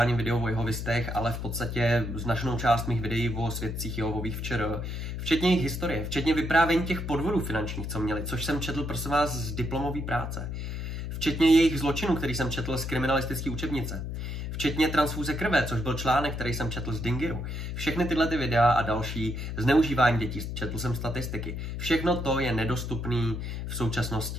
videu o jehovistech, ale v podstatě značnou část mých videí o svědcích Jehovových včera, včetně jejich historie, včetně vyprávění těch podvodů finančních, co měli, což jsem četl, prosím vás, z diplomové práce. Včetně jejich zločinů, který jsem četl z kriminalistické učebnice. Včetně transfúze krve, což byl článek, který jsem četl z Dingiru. Všechny tyhle ty videa a další, zneužívání dětí, četl jsem statistiky. Všechno to je nedostupné v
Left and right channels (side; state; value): left; noise; hum, 5 dB below the sound